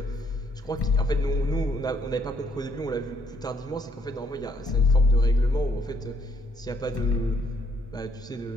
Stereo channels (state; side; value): normal; both; correlation 0.69